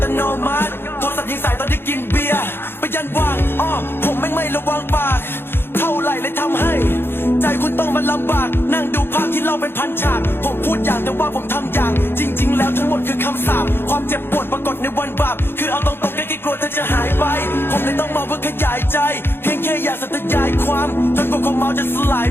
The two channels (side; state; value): right; late; 0.11 ms